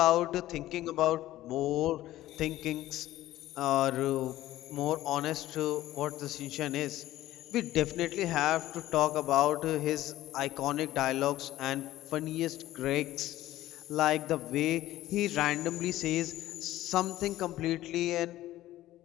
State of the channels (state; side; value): quieter; right; 15.0 dB